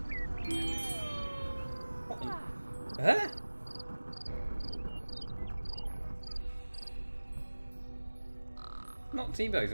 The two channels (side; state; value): both; inverted; correlation -1.00